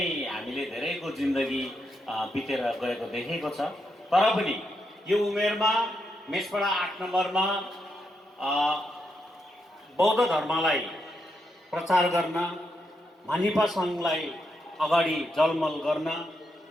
हामीले धेरैको जिन्दगी बितेर गएको देखेको छ। तर पनि यो उमेरमा मेसपाडा 8 नम्बरमा बौद्ध धर्मलाई प्रचार गर्न मानिपा सङ्घलाई अगाडि जलमल गर्न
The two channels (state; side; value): normal; both; correlation 0.82